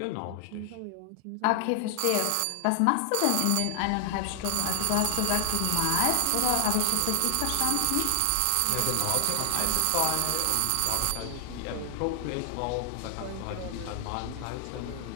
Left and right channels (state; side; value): different; both; correlation 0.00